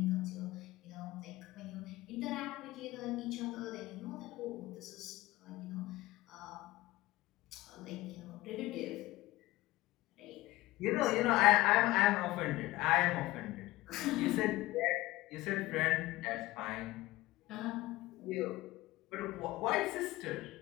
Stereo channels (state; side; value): quieter; right; 18.3 dB